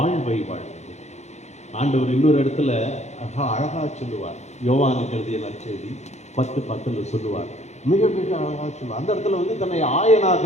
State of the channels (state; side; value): late; right; 0.33 ms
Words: வாழ்வது. ஆண்டவர் இன்னொரு இடத்துல அழகா சொல்லுவார், யோவானுக்கு எழுதிய நற்செய்தி 10:10 சொல்லுவார். மிக மிக அழகாக சொல்லுவார். அந்த இடத்துல வந்து தன்னை